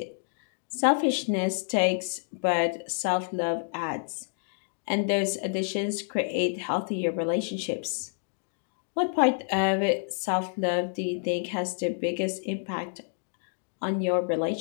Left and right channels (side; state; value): right; silent; digital silence